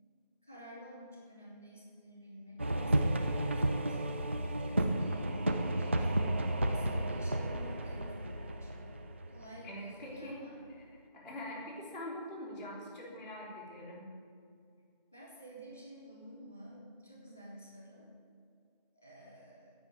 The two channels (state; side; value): inverted; both; correlation -0.85